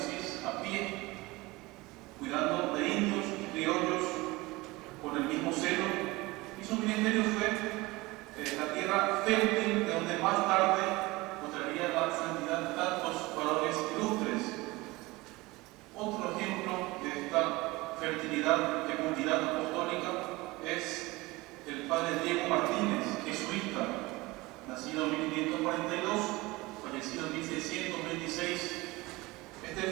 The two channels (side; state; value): left; quieter; 21.7 dB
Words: a pie, cuidando de indios y criollos con el mismo celo. Y su ministerio fue la tierra fértil de donde más tarde mostraría la santidad de tantos varones ilustres. Otro ejemplo de esta fertilidad, fecundidad apostólica es el padre Diego Martínez, jesuita, nacido en 1542, fallecido en 1626. Este